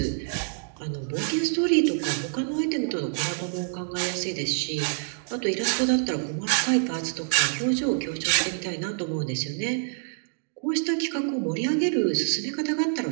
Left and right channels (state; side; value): silent; left; digital silence